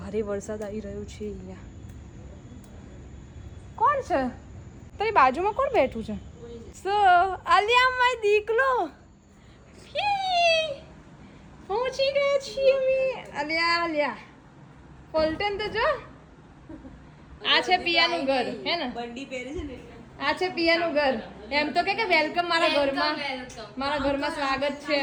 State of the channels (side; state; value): both; identical; correlation 1.00